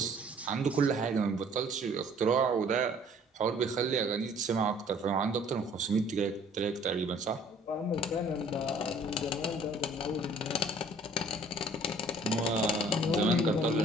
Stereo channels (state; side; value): normal; both; correlation 0.55